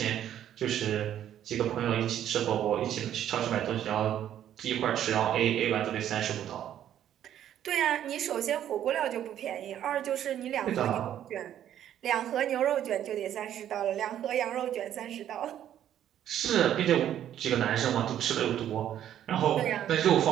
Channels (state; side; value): quieter; left; 10.9 dB